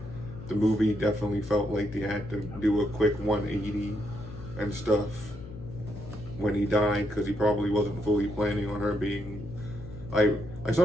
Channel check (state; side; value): noise; left; hum, 15 dB below the sound